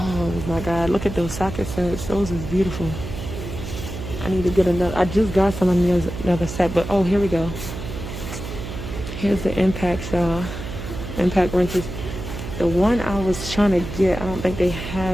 my God, look at those socket sets. Those is beautiful. I need to get another. I just got some of another set, but oh, here we go. Here's the impacts, y'all. Impact wrenches. The one I was trying to get, I don't think they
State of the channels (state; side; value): noise; right; hum, 8 dB below the sound